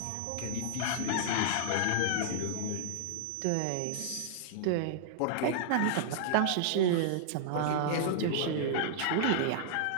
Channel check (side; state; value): both; different; correlation -0.01